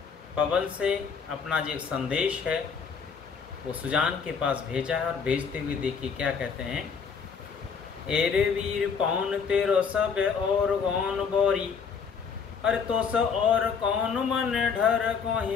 पवन से अपना जो संदेश है वो सुजान के पास भेजा है और भेजते हुए देखिए क्या कहते हैं। एरे वीर पौन तेरो सब और गौन बोरी, अरे तो स और कौन मन ढर को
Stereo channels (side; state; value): right; quieter; 6.0 dB